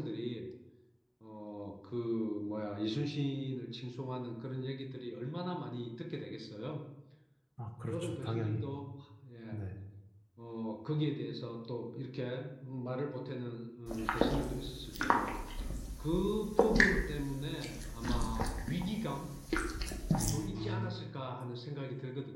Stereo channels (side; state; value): both; identical; correlation 1.00